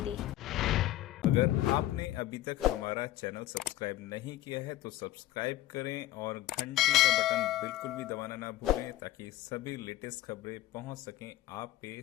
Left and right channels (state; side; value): quieter; right; 14.8 dB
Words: अगर आपने अभी तक हमारा चैनल सब्सक्राइब नहीं किया है तो सब्सक्राइब करें और घंटी का बटन बिल्कुल भी दबाना ना भूलें, ताकि सभी लेटेस्ट खबरें पहुंच सकें आप पे